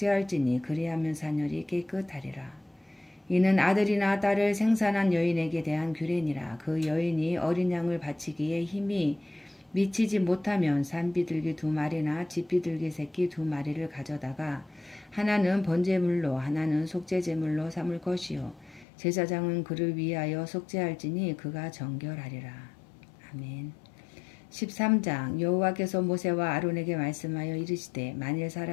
그리하면 사늘이 깨끗하리라. 이는 아들이나 딸을 생산한 여인에게 대한 규례니라. 그 여인이 어린 양을 바치기에 힘이 미치지 못하면 산비둘기 2마리나 집비둘기 새끼 2마리를 가져다가 하나는 번제물로 하나는 속죄제물로 삼을 것이요 제사장은 그를 위하여 속죄할지니 그가 정결하리라. 아멘. 13장 여호와께서 모세와 아론에게 말씀하여 이르시되 만일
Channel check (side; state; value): right; drops out; at 18.9 s